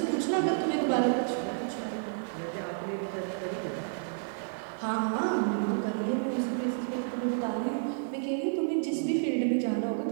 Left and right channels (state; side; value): silent; left; digital silence